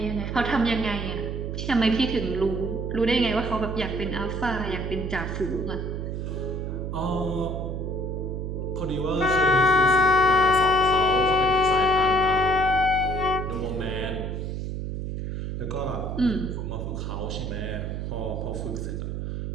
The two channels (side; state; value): right; noise; hum, 4 dB below the sound